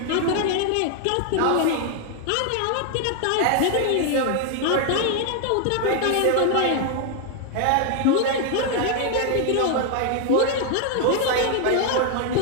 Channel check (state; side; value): different; both; correlation 0.00